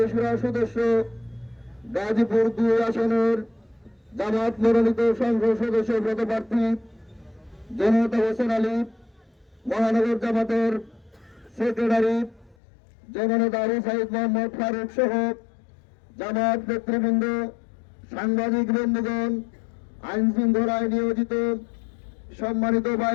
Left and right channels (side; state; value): right; drops out; at 12.6 s